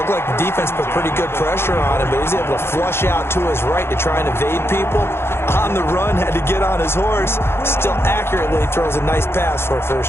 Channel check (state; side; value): late; right; 0.12 ms